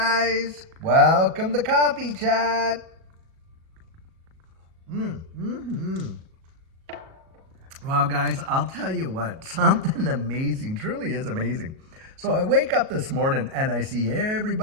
Welcome to Coffee Chat. Well, guys, I'll tell you what, something amazing, truly is amazing. So I wake up this morning and I see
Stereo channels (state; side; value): late; left; 37 ms